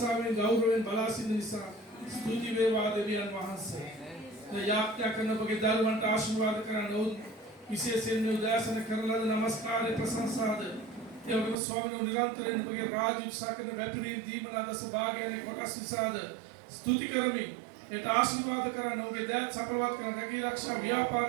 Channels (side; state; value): left; drops out; at 11.6 s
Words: ගෞරවයෙන් බලා සිටින නිසා ස්තුති වේවා දෙවියන් වහන්සේ. යාඥා කරන ඔබගේ දරුවන්ට ආශිර්වාද කරන්න ඕන විශේෂයෙන් මේ උදෑසන කරන ලද නමස්කාරයේ ප්‍රශංසාද ඒ වගේම ස්වාමීන් නිරන්තරයෙන් ඔබගේ රාජ්‍ය උත්සාහ කරන වැපිරීම් දීමන දස භාගයන්ගේ කොටස් නිසාද ස්තුති කරමින් ඒට ආශිර්වාද කරන්න ඔබගේ දෑත් සපලවත් කරන රැකී ආරක්ෂා